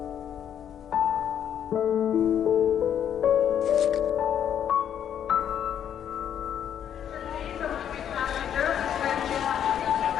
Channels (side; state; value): right; quieter; 9.3 dB